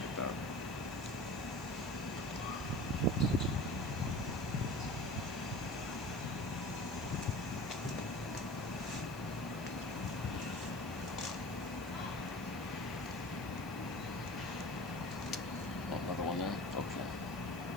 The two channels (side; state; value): right; noise; hiss, 17 dB below the sound